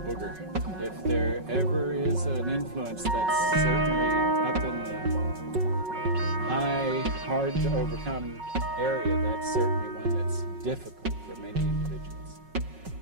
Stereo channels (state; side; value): late; left; 5.4 ms